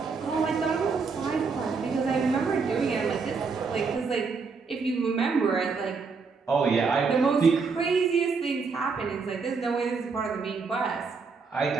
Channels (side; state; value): left; quieter; 4.9 dB